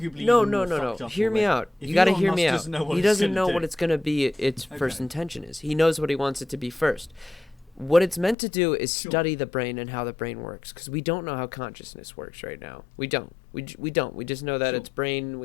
No. Hear me out. You got to hear me out. He doesn't know what it's going to be. Its first intention is. He knows what he wants it to be first. What it's meant to do is study the brain and how the brain works, because we don't know how consciousness works right now. We don't. We don't. We just know that it's brain.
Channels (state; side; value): drops out; right; at 8.3 s